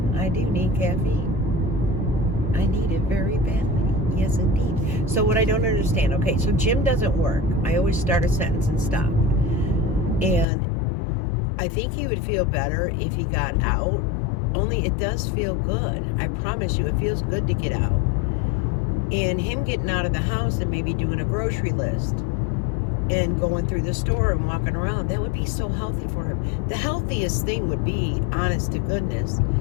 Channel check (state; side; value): drops out; right; at 10.5 s